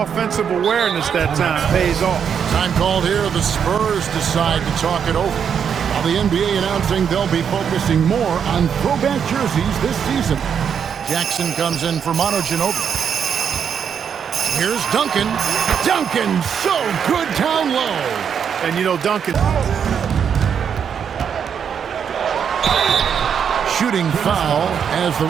awareness that time pays off. Time called here. The Spurs decide to talk it over. While the NBA announcing they'll be focusing more on throwback jerseys this season. Jackson comes in for Manu Ginobili. Here's Duncan. Duncan, so good down low. And you know, Duncan... Shooting foul as the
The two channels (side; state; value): left; quieter; 7.6 dB